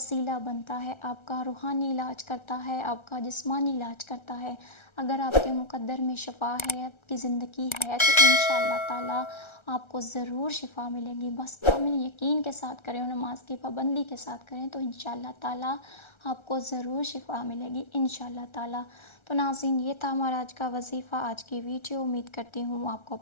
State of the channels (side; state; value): right; late; 1.3 ms